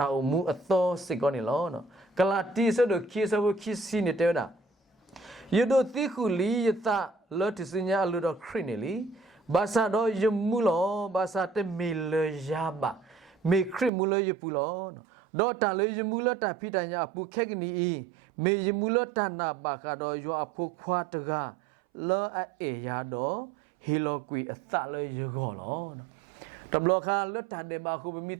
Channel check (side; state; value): left; drops out; at 13.9 s